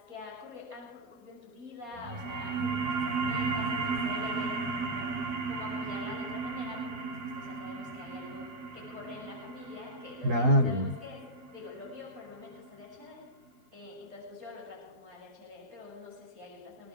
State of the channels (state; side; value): late; left; 12 ms